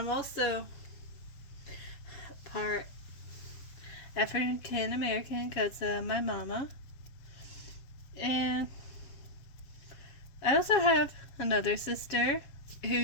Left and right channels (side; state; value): right; late; 7.3 ms